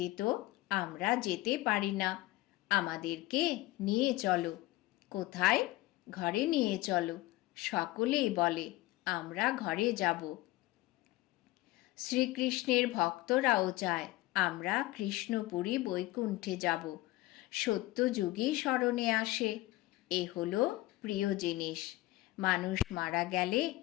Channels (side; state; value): right; quieter; 18.2 dB